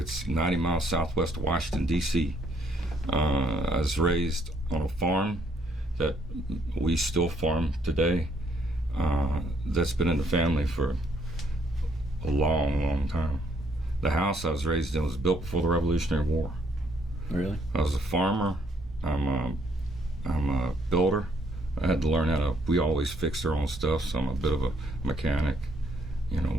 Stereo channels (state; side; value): normal; both; correlation 0.69